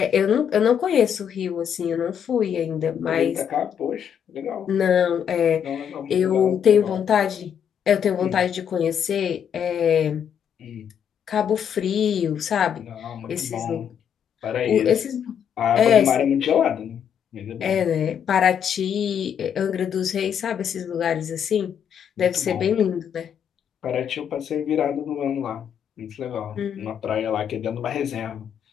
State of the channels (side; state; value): right; quieter; 8.3 dB